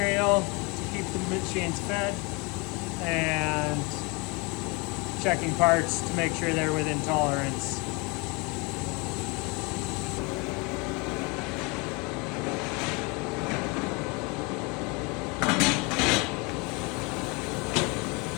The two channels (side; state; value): right; quieter; 28.9 dB